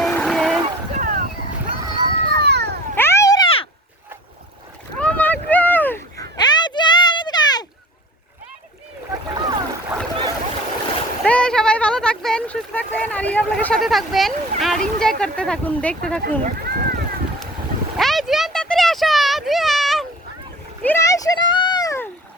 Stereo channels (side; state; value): both; normal; correlation 0.43